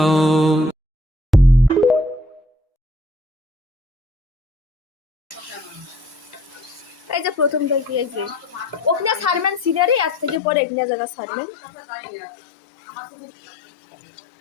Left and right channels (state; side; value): drops out; right; at 10.4 s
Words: এই যে প্রথম থেকে এই যে ওখানে সারমেন সিনারি আজ থেকে পরে এখানে জায়গা সারমেন।